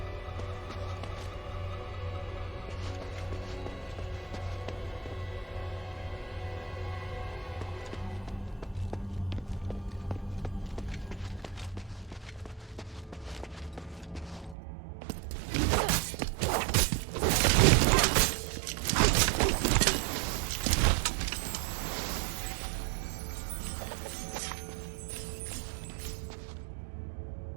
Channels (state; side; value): drops out; left; at 14.6 s